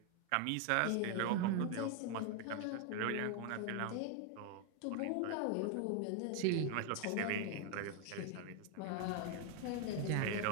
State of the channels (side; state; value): both; different; correlation 0.01